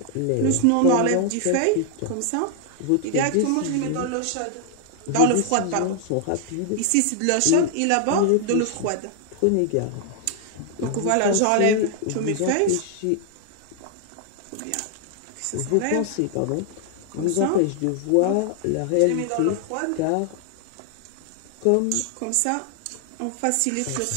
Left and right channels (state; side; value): different; both; correlation 0.00